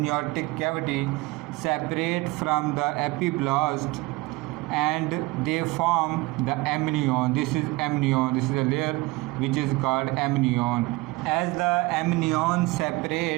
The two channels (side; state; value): left; quieter; 22.1 dB